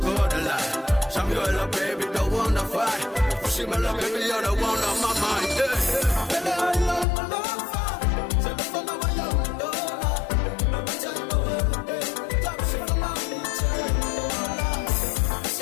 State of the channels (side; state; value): right; drops out; at 7.1 s